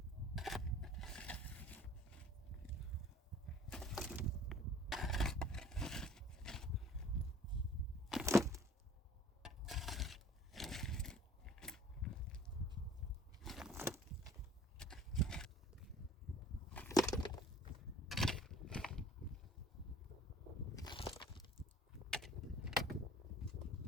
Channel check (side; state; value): both; normal; correlation 0.51